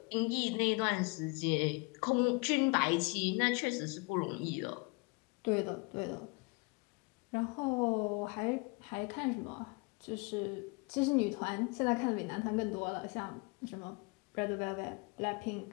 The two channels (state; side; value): quieter; right; 29.3 dB